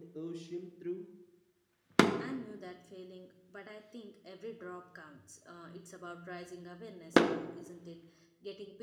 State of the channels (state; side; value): identical; both; correlation 1.00